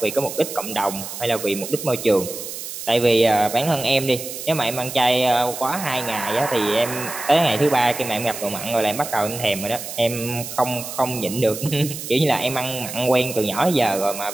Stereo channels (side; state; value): right; noise; hiss, 9 dB below the sound